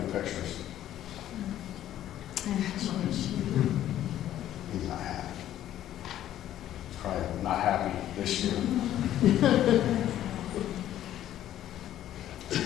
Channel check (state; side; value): quieter; right; 12.2 dB